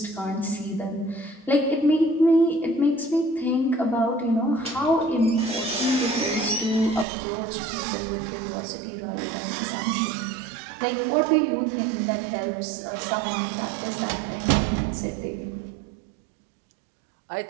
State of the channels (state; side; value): drops out; left; at 7.1 s